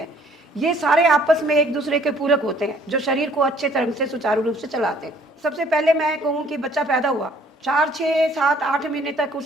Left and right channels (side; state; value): both; normal; correlation 0.59